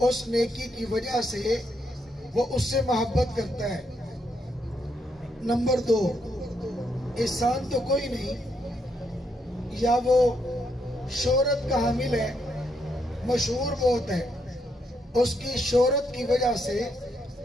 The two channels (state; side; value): normal; both; correlation 0.77